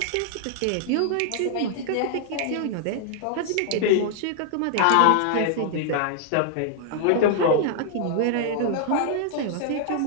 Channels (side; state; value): both; different; correlation -0.01